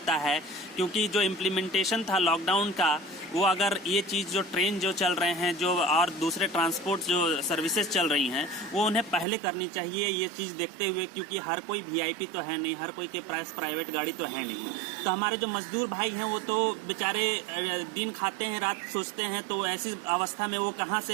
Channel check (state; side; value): drops out; left; at 9.2 s